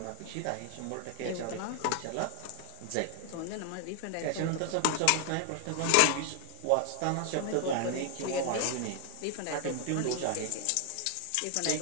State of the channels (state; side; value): different; both; correlation 0.00